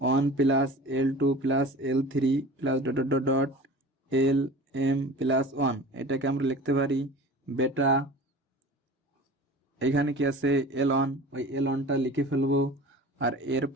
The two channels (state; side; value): normal; both; correlation 0.39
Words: plus L2 plus L3 plus dot dot dot L M plus 1। এটাকে আমরা লিখতে পারি বেটা এখানে কি আছে L1, ওই L1টা লিখে ফেলবো। আর এর